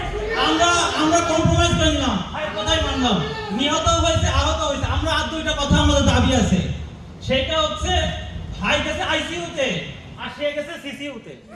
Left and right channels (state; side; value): identical; both; correlation 1.00